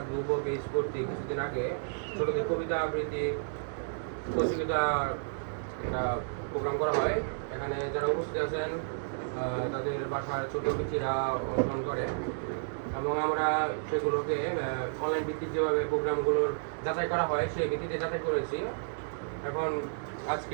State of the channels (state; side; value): silent; left; digital silence